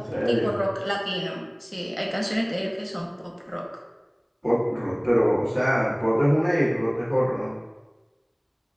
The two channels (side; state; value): both; identical; correlation 1.00